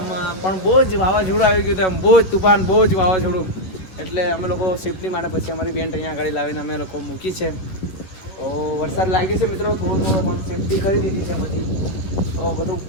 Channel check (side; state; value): right; late; 11 ms